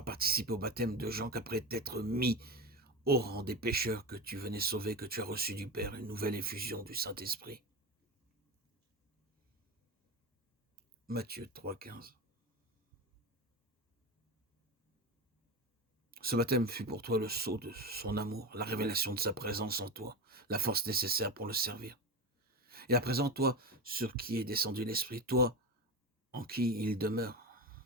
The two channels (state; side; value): normal; both; correlation 0.21